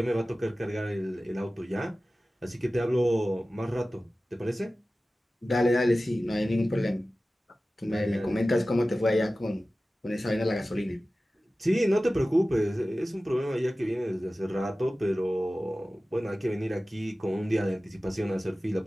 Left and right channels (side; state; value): both; normal; correlation 0.96